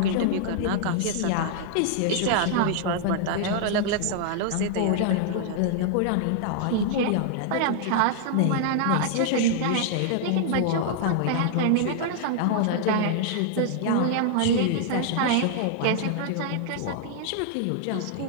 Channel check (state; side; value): different; both; correlation -0.01